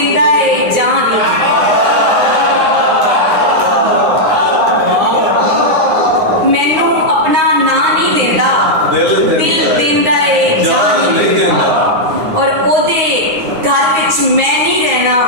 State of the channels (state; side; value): late; left; 9.7 ms